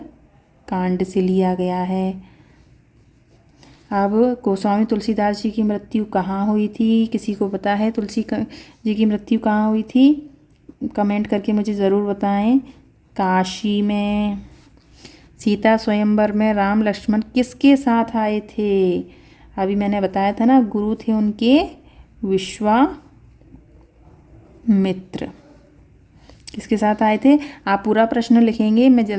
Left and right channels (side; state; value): both; identical; correlation 1.00